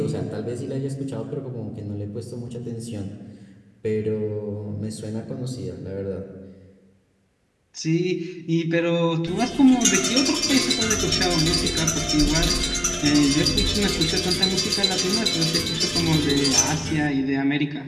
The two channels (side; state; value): both; identical; correlation 1.00